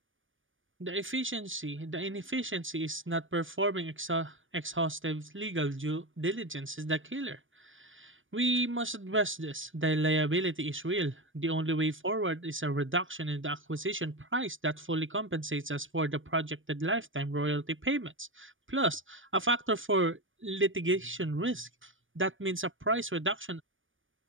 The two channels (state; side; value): late; left; 0.57 ms